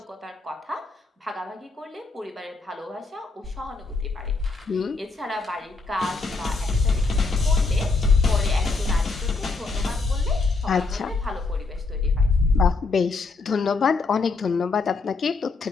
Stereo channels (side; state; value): right; quieter; 4.0 dB